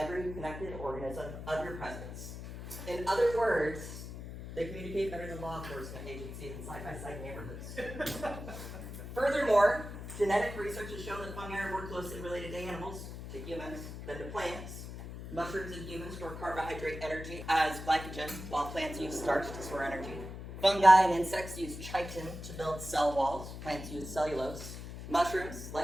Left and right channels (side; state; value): left; noise; hum, 9 dB below the sound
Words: connected organism of your presence. In other words, they communicate better than law enforcement agencies in side-by-side neighborhoods. Furthermore, genetic research has shown that fungi are more closely related to animals, to humans, than to plants. Mushrooms and humans store carbohydrate energy as glycogen, while plants use starch to store energy. Fungi and insects use chitin to build cell walls. Plants use cellulose. Mushrooms,